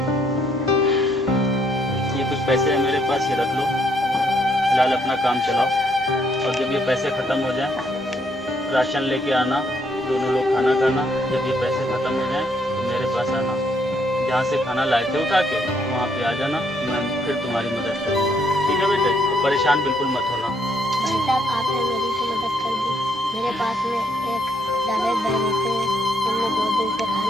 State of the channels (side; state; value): both; normal; correlation 0.71